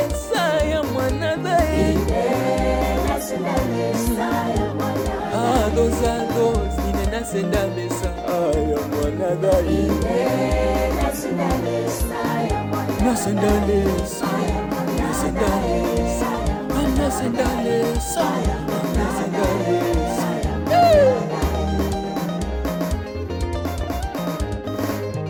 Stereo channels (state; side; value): identical; both; correlation 1.00